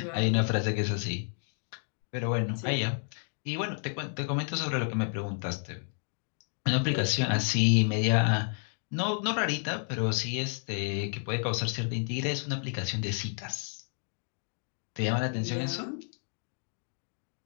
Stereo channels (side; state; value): right; silent; 57 dB below the other